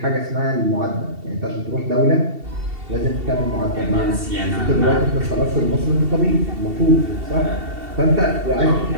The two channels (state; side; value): late; left; 2.7 ms